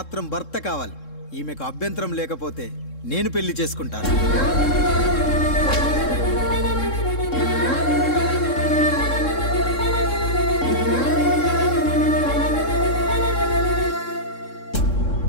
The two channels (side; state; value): right; late; 3.7 ms